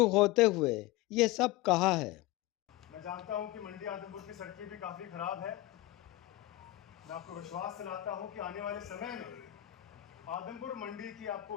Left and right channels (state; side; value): quieter; right; 16.6 dB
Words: होते हुए ये सब कहा है। मैं जानता हूं कि मंडी आदमपुर की सड़कें भी काफ़ी ख़राब है। मैं आपको विश्वास दिलाता हूं कि आने वाले समय में आदमपुर मंडी की